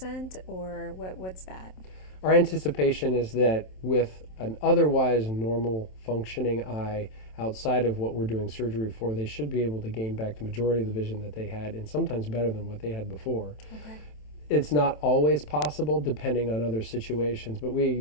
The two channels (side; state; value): right; late; 27 ms